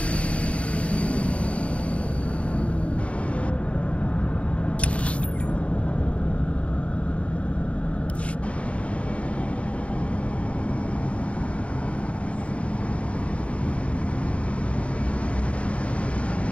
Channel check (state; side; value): late; right; 0.063 ms